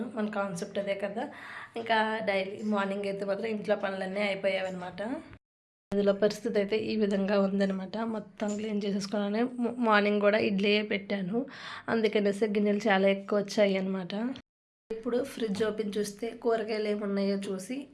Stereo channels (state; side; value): identical; both; correlation 1.00